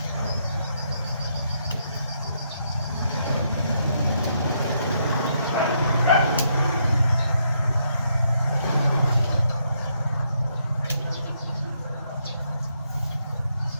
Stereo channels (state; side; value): inverted; both; correlation -0.76